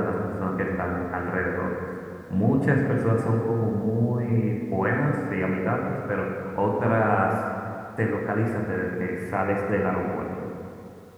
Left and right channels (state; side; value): identical; both; correlation 1.00